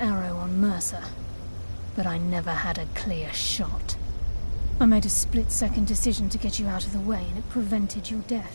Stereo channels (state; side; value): inverted; both; correlation -1.00